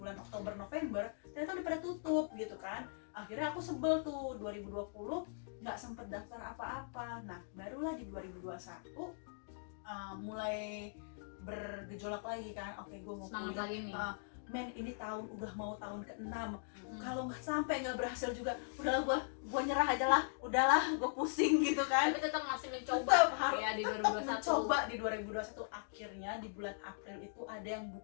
Oktober November, ternyata udah pada tutup gitu kan. Akhirnya aku sebel tuh 2020 nggak sempet daftar apa-apa. Nah barulah di 2021 mulai bergejolak lagi kan. Oke, gue mau kuliah. Men ini udah mau tahun ke-6. Kalau nggak sampai nggak berhasil juga, udahlah gue nyerah aja lah, udahlah gue pusing gitu kan. Tapi tetap masih mencoba. Tetap mencoba di 2021. Akhirnya di bulan April itu ada yang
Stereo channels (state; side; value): silent; right; digital silence